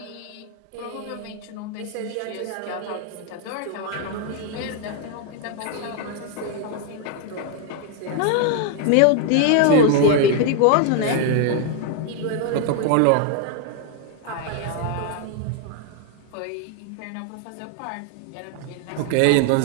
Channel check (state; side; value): different; both; correlation 0.00